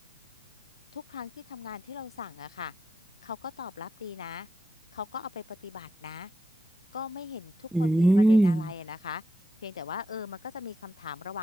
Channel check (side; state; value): both; normal; correlation 0.85